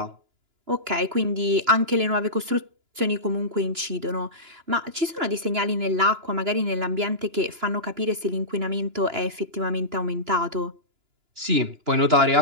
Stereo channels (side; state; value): left; late; 2.9 ms